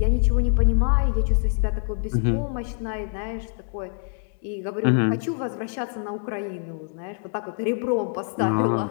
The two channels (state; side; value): silent; right; 57 dB below the other